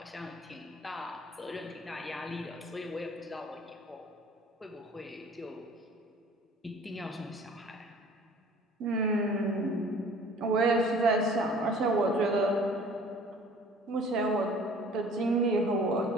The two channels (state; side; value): normal; both; correlation 0.50